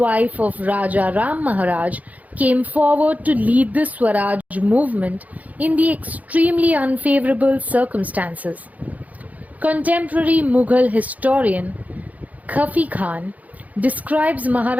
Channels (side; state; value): left; late; 0.075 ms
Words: of Raja Ram Maharaj, came forward to lead the Swaraj movement in the extremely unfavorable circumstances. Contemporary Mughal historian Khafi Khan describes